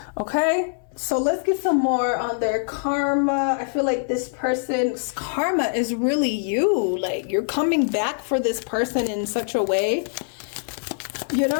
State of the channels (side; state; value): right; silent; 63 dB below the other